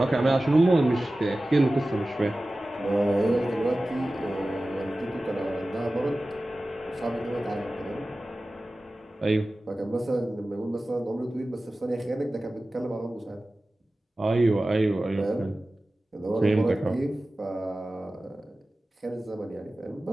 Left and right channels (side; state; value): both; normal; correlation 0.96